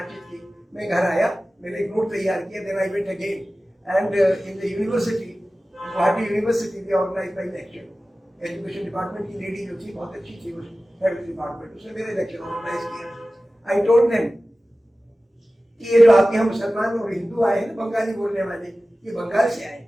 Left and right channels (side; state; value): both; normal; correlation 0.96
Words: की, मैं घर आया, मैंने एक नोट तैयार किया, then I went again and in the university, Guwahati university they organize my lecture. Education department की लेडी जो थी बहुत अच्छी थी, उस हेड डिपार्टमेंट, उसने मेरे लेक्चर ऑर्गेनाइज किया। आई टोल्ड देम कि ये जो आपके यहाँ मुसलमान और हिंदू आए हैं बंगाली बोलने वाले, ये बंगाल से आए